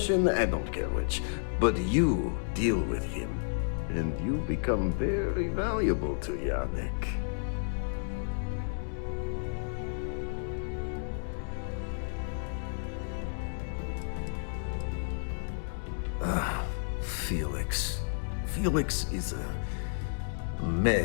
I don't care which. But you deal with him, and you become very valuable to Yannick. Felix. Felix is a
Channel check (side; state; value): right; silent; digital silence